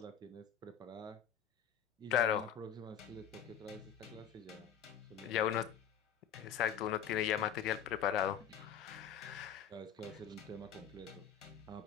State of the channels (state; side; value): quieter; right; 8.5 dB